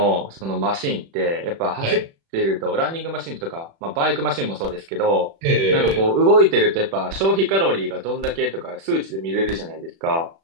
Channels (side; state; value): left; late; 36 ms